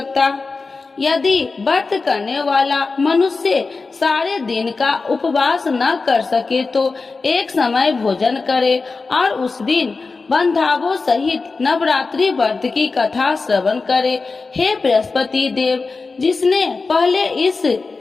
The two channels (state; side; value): quieter; right; 4.1 dB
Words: यदि व्रत करने वाला मनुष्य सारे दिन का उपवास न कर सके तो एक समय भोजन करे और उस दिन बंधावों सहित नवरात्रि व्रत की कथा श्रवण करे। हे बृहस्पति देव, जिसने पहले इस